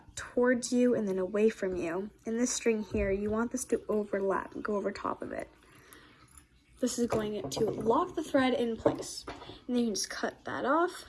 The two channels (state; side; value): identical; both; correlation 1.00